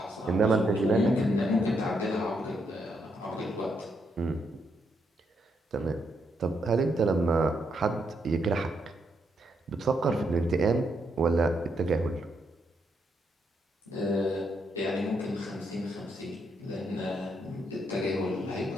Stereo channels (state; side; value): normal; both; correlation 0.78